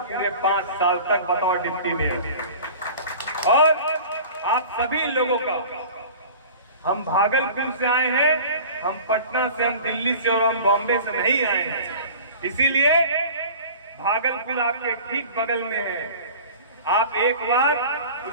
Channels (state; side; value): inverted; both; correlation -0.41